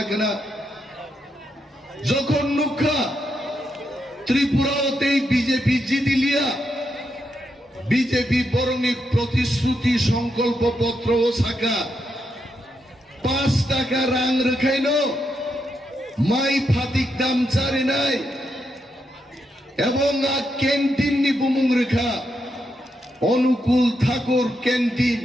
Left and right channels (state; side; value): normal; both; correlation 0.82